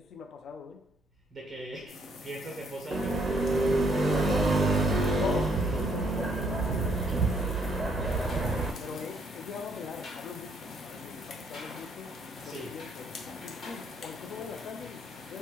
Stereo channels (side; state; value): both; normal; correlation 0.68